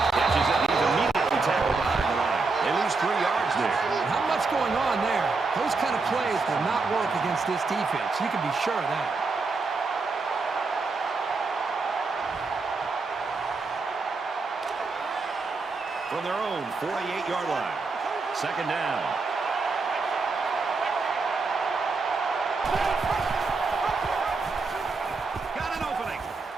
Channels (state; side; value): quieter; left; 4.1 dB